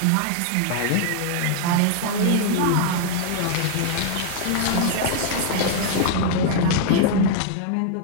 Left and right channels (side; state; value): both; different; correlation 0.00